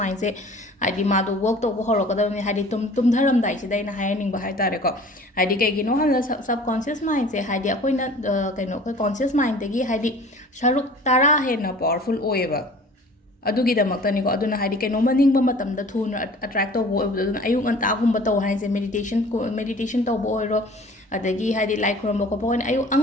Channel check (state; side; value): normal; both; correlation 0.46